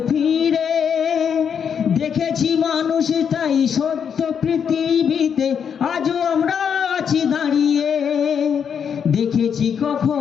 ফিরে? দেখেছি মানুষ তাই সত্য পৃথিবীতে, আজও আমরা আছি দাঁড়িয়ে। দেখেছি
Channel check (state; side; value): quieter; right; 7.4 dB